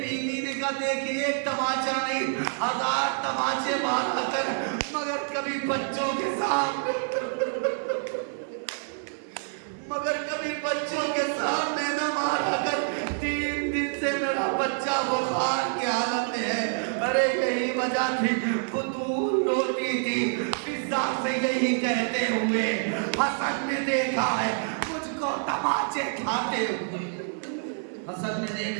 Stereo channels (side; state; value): left; silent; 60 dB below the other